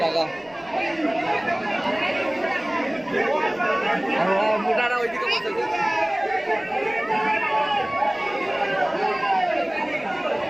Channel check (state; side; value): noise; left; rumble, 28 dB below the sound